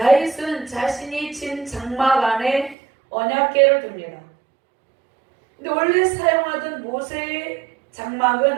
자신이 친 장막 안에 언약궤를 둡니다. 근데 원래 사용하던 모세의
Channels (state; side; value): drops out; left; at 2.8 s